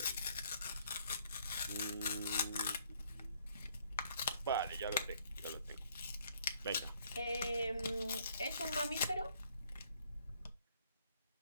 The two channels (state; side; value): inverted; both; correlation -0.65